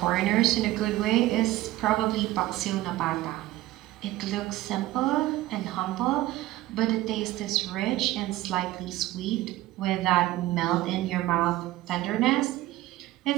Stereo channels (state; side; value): quieter; left; 16.2 dB